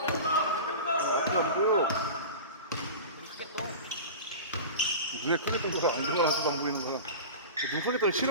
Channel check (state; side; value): inverted; both; correlation -0.31